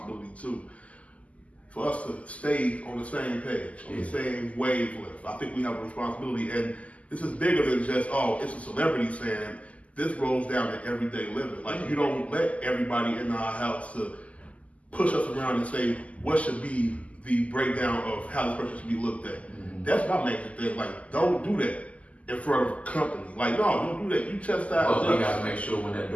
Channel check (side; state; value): right; late; 0.069 ms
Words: too for us to stay on the same page, on the same wavelength. I think we have a responsibility, and this is bigger than just, oh, it's a celebrity saying. This rolls down to everyday living. Like, you don't let everybody in our house to push us around and say what should be the breakdown of how this person should be looked at. Mm-hmm. That's my major thing. Like, don't do that in front of a company. Like, no, don't do that. You chastise us. Well, we gotta make sure when that